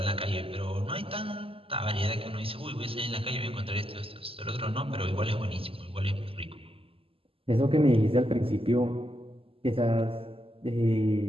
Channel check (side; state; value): left; late; 0.27 ms